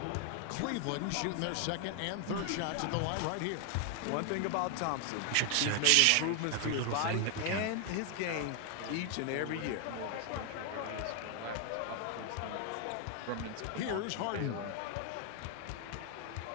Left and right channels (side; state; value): both; different; correlation 0.00